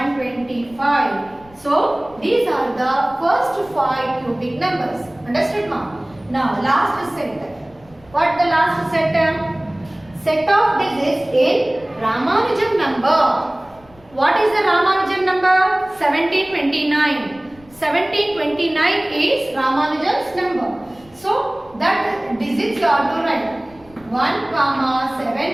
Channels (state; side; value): noise; left; rumble, 27 dB below the sound